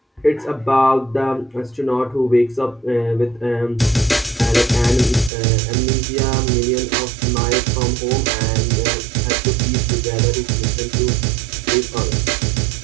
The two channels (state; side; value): drops out; left; at 5.3 s